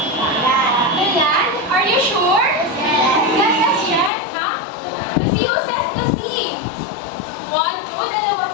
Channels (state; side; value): drops out; right; at 4.1 s